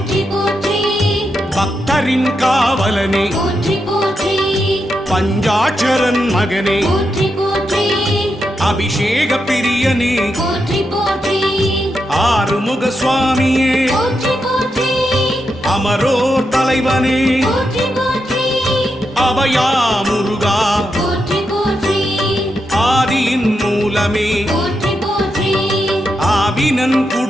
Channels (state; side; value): normal; both; correlation 0.84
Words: போற்றி பக்தரின் காவலனே போற்றி போற்றி பஞ்சாட்சரன் மகனே போற்றி போற்றி அபிஷேக பிரியனே போற்றி போற்றி ஆறுமுக சுவாமியே போற்றி போற்றி அமரோர் தலைவனே போற்றி போற்றி அபயா முருகா போற்றி போற்றி ஆதியின் மூலமே போற்றி போற்றி ஆவினன்